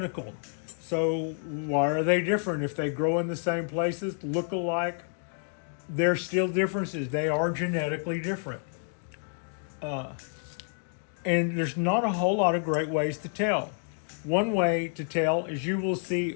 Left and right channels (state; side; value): silent; right; 59 dB below the other